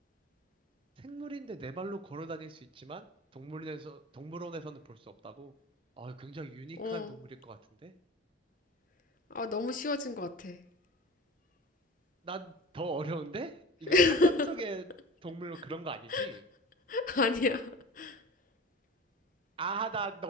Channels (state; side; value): normal; both; correlation 0.36